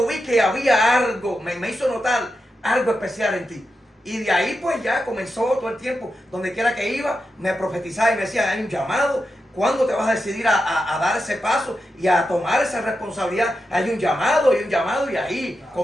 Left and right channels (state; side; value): normal; both; correlation 0.88